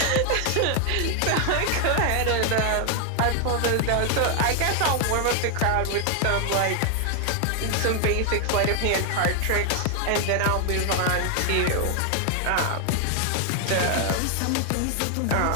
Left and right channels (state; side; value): different; both; correlation 0.00